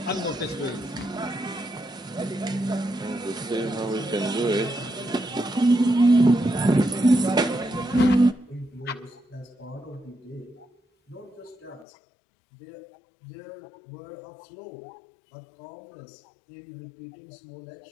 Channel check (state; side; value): drops out; right; at 11.9 s